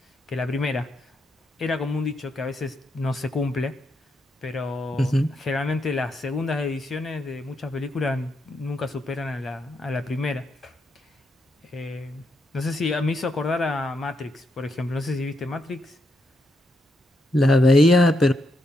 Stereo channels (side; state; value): both; normal; correlation 0.80